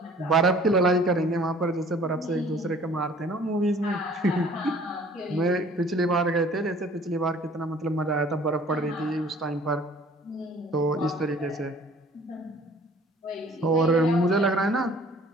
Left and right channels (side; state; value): both; normal; correlation 0.52